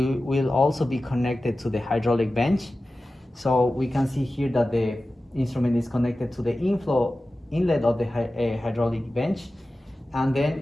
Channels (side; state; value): both; normal; correlation 0.95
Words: also be connected to the hydraulic bench. So we can see here that the instrument is connected to the inlet of the hydraulic bench, and